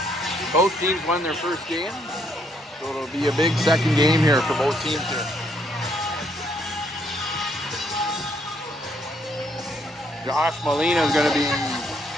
Both teams won their first game, so it'll be a big second game here for both teams here. Josh Molina is going to be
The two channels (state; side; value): normal; both; correlation 0.70